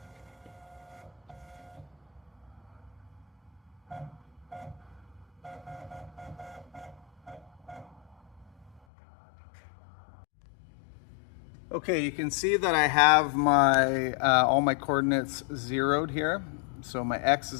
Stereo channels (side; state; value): right; drops out; at 8.8 s